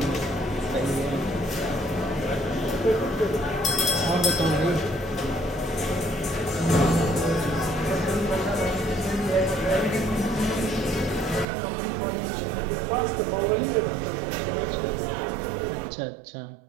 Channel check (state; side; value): drops out; left; at 11.5 s